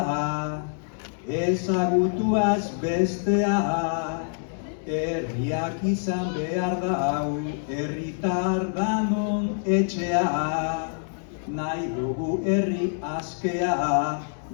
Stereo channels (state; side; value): silent; right; 61 dB below the other